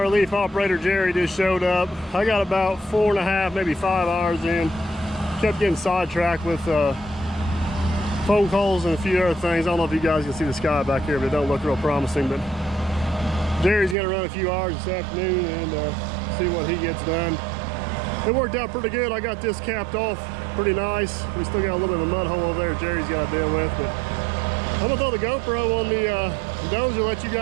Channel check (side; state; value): left; drops out; at 14.0 s